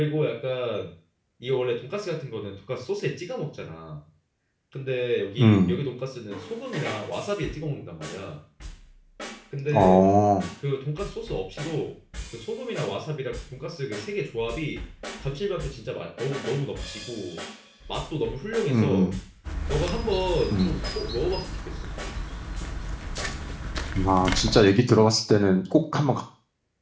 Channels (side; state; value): both; identical; correlation 1.00